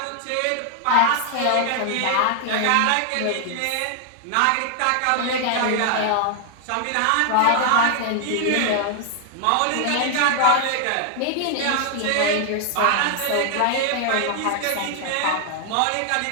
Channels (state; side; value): different; both; correlation 0.00